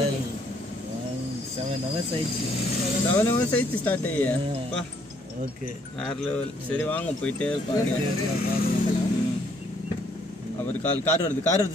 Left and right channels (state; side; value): normal; both; correlation 0.67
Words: 7 hours ஆயிடுச்சு. 7 hours ஆயிடுச்சு ஸ்டார்ட் ஆகியா? ஓகே வேற லெவல். சரி வாங்க போயிட்டே இருப்பாங்க. அவர் கார் வருது